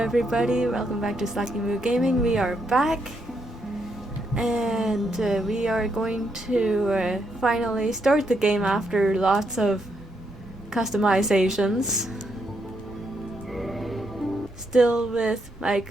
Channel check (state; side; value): normal; both; correlation 0.78